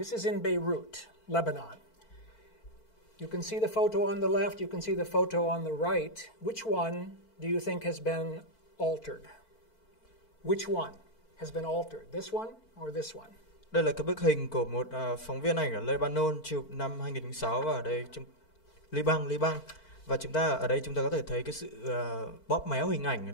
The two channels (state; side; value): late; right; 4.5 ms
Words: is in Beirut, Lebanon. You can see the photo on the left, you can see the photo on the right. Which one do you think has been altered? Which one has been altered? This one or this one? Đây là cái bức hình của một phóng viên ảnh ở Lebanon chụp năm 2006 và ở đây Liban. Và chúng ta có thể thấy cái sự bóp méo hình ảnh ở